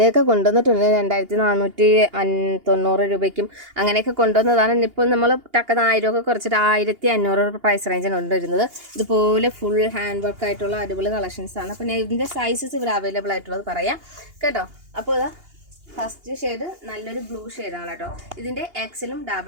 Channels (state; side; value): late; left; 2.8 ms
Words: കൊണ്ടുവന്നിട്ടുണ്ട് 2490 രൂപയ്ക്കും അങ്ങനെയൊക്കെ കൊണ്ടുവന്നതാണ്. ഇപ്പോൾ നമ്മൾ ടക്കുന്ന 1000 ഒക്കെ കുറച്ചിട്ട് 1500 പ്രൈസ് റേഞ്ചാണ് കൊണ്ടുവരുന്നത്. ഇതുപോലെ ഫുൾ ഹാൻഡ് വർക്ക് ആയിട്ടുള്ള അടിപൊളി കളക്ഷൻസ് ആണ്. പിന്നെ ഇതിൻ്റെ സൈസസ് ഇവിടെ അവൈലബിൾ ആയിട്ടുള്ളത് പറയാം കേട്ടോ. അപ്പോൾ ഇതാ ഫസ്റ്റ് ഷെയ്ഡ് നല്ലൊരു ബ്ലൂ ഷെയ്ഡാണ് കേട്ടോ. ഇതിൻ്റെ എക്സലും